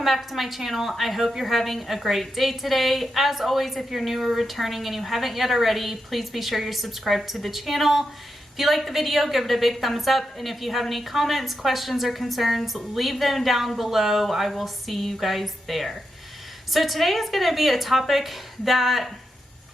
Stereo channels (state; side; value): normal; both; correlation 0.86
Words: back to my channel. I hope you're having a great day today. As always, if you're new or returning and you haven't yet already, please be sure you're subscribed to the channel. If you like the video, give it a big thumbs up. And if you have any comments, questions, or concerns, leave them down below. I will see you guys there. So today is going to be a topic that